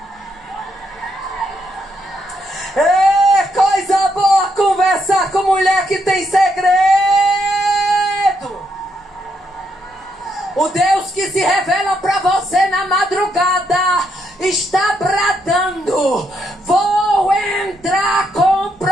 É coisa boa conversar com mulher que tem segredo. O Deus que se revela para você na madrugada está bradando, vou entrar com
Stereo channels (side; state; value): both; normal; correlation 0.77